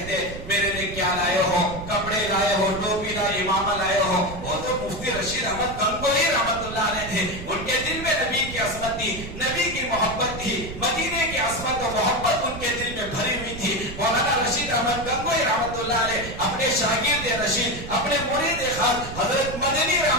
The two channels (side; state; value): right; noise; rumble, 10 dB below the sound